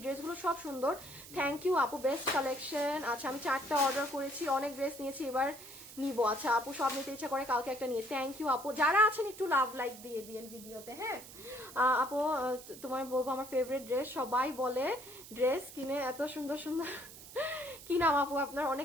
ড্রেসগুলো সব সুন্দর, থ্যাংক ইউ আপু, বেস্ট কালেকশন। আচ্ছা, আমি 4টা অর্ডার করেছি, অনেক ড্রেস নিয়েছি, এবার নিবো। আচ্ছা আপু, সব নিতে ইচ্ছা করে, কালকে একটা নিয়ে, থ্যাংক ইউ আপু। যারা আছেন একটু লাভ লাইক দিয়ে দিয়েন ভিডিওতে। হ্যাঁ আপু, তোমার বলবো আমার ফেভারিট ড্রেস, সবাই বলে ড্রেস কিনে এত সুন্দর সুন্দর। কি নাম আপু আপনার?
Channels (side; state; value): right; noise; hiss, 16 dB below the sound